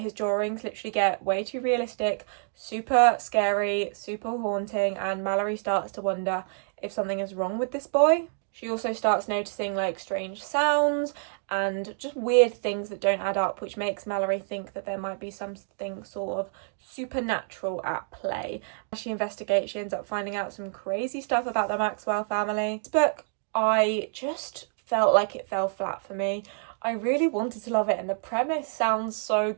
drawings literally get way too realistic, super scary, super haunting, and Mallory starts to wonder if something is wrong with this boy. She also starts noticing like strange sounds and just weird things that don't add up, which makes Mallory think that there might be something sort of supernatural at play. As she investigates, she ends up finding out some crazy stuff about the Maxwell family. This book, I just felt like it fell flat for me. I really wanted to love it and the premise sounds so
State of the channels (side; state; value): left; silent; digital silence